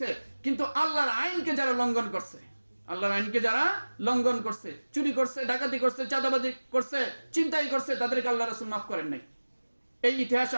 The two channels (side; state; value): both; inverted; correlation -1.00